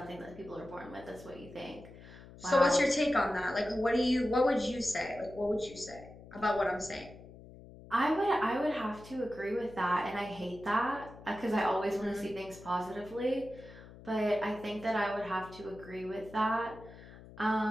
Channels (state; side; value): noise; left; hum, 18 dB below the sound